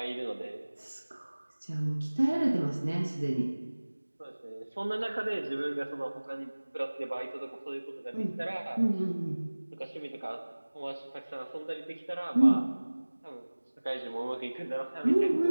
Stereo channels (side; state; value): both; inverted; correlation -1.00